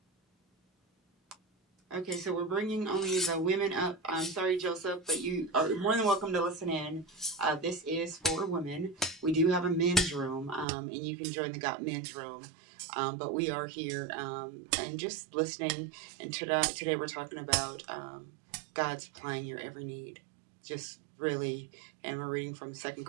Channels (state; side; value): drops out; left; at 10.7 s